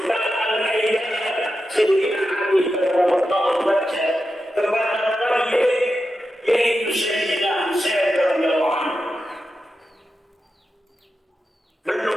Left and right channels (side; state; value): both; normal; correlation 0.90